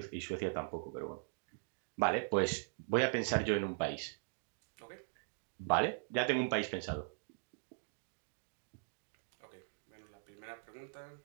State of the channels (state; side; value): silent; left; digital silence